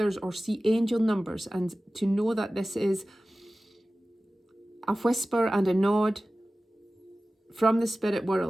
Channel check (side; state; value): both; normal; correlation 0.96